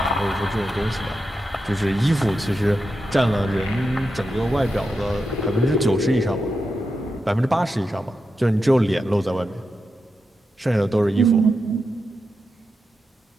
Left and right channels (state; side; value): normal; both; correlation 0.88